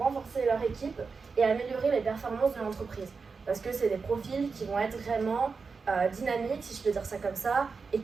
leur équipe et améliorer les performances de l'entreprise. Parce que c'est des profils qui vont être vraiment dynamiques, si je peux dire ça comme ça, et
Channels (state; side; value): quieter; left; 4.9 dB